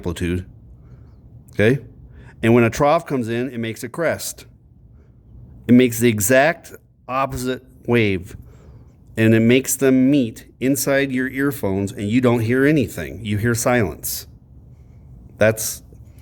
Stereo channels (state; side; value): identical; both; correlation 1.00